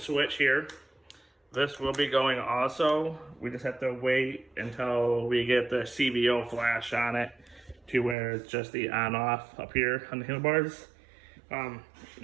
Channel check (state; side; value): drops out; left; at 8.2 s